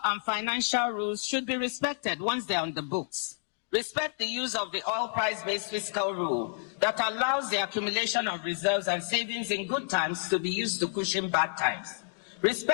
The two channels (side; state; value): right; silent; digital silence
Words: and financial rules should be respected once they are on the books. Respect the use of the oil price-based fiscal rule that allows the accumulation of reserves and savings in good times to be used to cushion bad times.